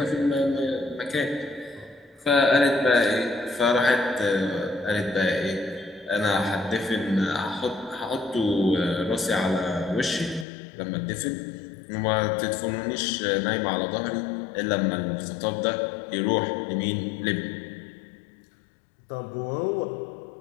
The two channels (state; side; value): drops out; right; at 10.5 s